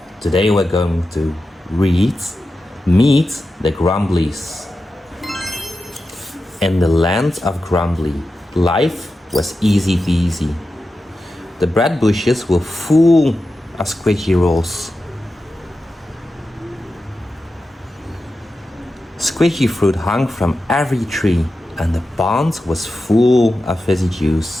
Today we're going to meet the GRUMBLIES. In the land of Grumbly, life was easy peasy. The bread bushes were full of squishy rolls. Squishy fruit hung from every tree, and the pond was full of fizzy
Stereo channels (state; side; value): normal; both; correlation 0.91